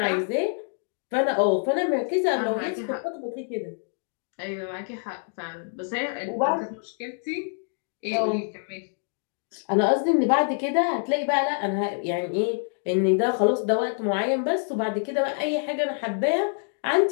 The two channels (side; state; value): right; silent; 61 dB below the other